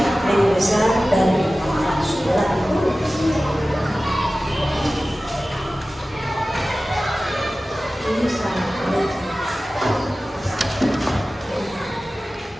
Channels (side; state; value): both; normal; correlation 0.96